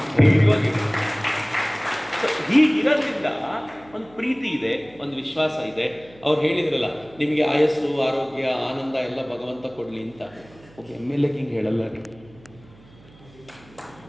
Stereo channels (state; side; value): noise; right; hum, 25 dB below the sound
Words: ಧೈರ್ಯವಾಗಿದೆ. ಹೀಗಿರೋದ್ರಿಂದ ಒಂದು ಪ್ರೀತಿ ಇದೆ, ಒಂದು ವಿಶ್ವಾಸ ಇದೆ. ಅವ್ರು ಹೇಳಿದ್ರಲ್ಲ, ನಿಮಗೆ ಆಯಸ್ಸು, ಆರೋಗ್ಯ, ಆನಂದ ಎಲ್ಲ ಭಗವಂತ ಕೊಡಲಿ ಅಂತ. ಒಬ್ಬ MLA ಹಿಂಗೆ ಹೇಳಲ್ಲ ರೀ,